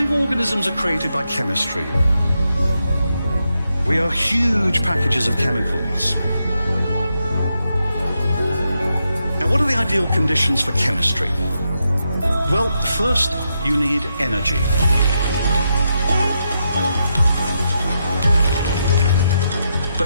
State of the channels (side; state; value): both; inverted; correlation -0.83